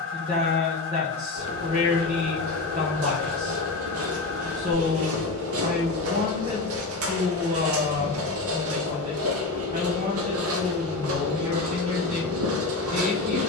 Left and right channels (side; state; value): right; quieter; 3.4 dB